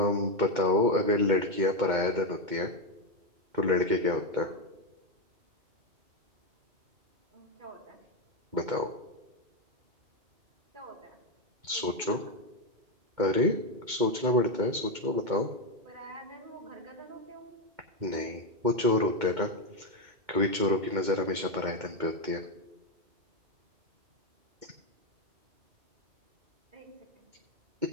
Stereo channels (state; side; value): late; left; 2.2 ms